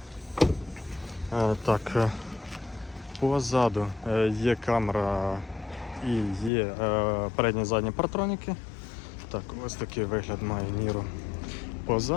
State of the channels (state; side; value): drops out; right; at 6.5 s